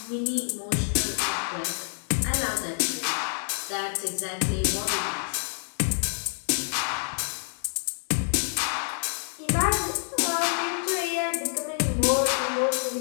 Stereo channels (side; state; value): right; silent; digital silence